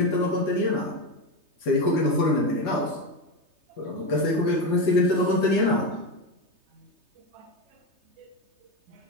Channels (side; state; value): left; late; 3.3 ms